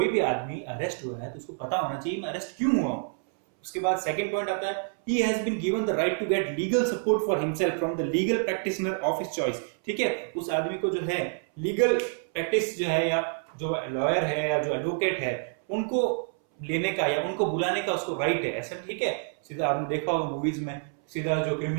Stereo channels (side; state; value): left; silent; 59 dB below the other